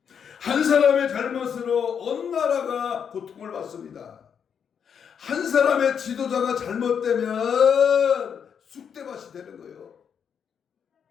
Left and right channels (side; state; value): right; quieter; 7.5 dB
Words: 한 사람의 잘못으로 온 나라가 고통을 받습니다. 한 사람의 지도자가 잘못되면 쑥대밭이 되는 거예요.